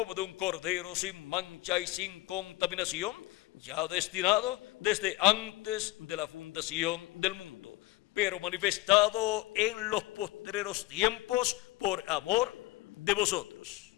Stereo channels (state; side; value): quieter; right; 19.1 dB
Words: de un cordero sin mancha y sin contaminación, ya destinado desde antes de la fundación del mundo, pero manifestado en los postreros tiempos por amor de vosotros.